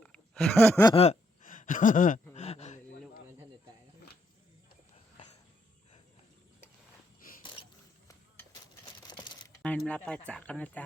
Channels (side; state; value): both; normal; correlation 0.75